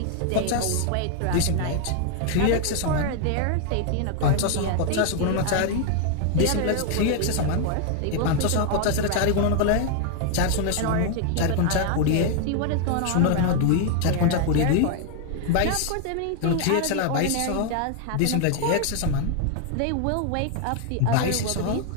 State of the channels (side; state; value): both; different; correlation 0.00